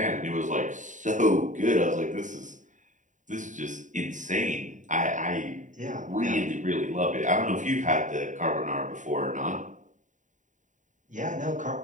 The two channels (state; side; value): late; left; 0.36 ms